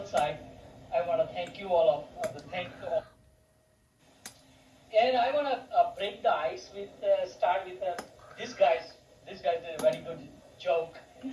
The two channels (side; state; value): both; identical; correlation 1.00